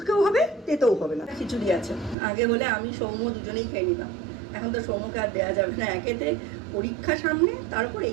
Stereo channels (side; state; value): left; drops out; at 2.1 s